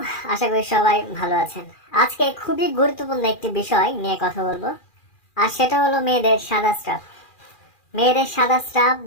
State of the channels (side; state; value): right; late; 2.4 ms